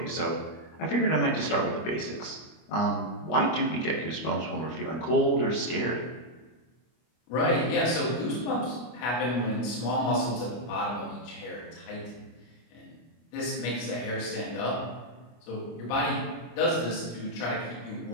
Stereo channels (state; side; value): late; right; 25 ms